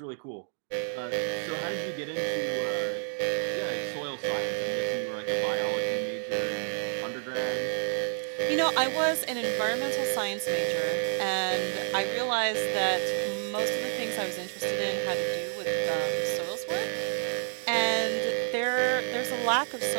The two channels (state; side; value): silent; left; digital silence